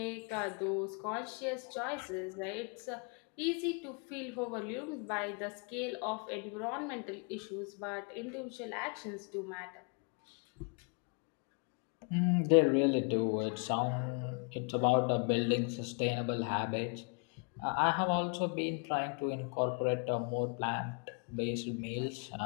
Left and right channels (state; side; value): quieter; right; 35.9 dB